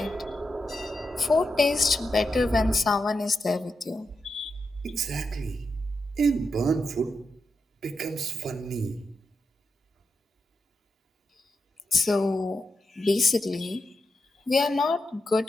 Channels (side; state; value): both; normal; correlation 0.86